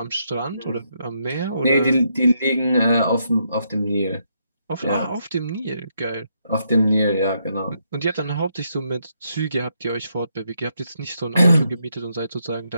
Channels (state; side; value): inverted; both; correlation -0.77